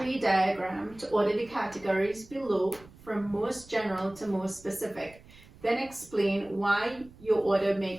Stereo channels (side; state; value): right; noise; rumble, 23 dB below the sound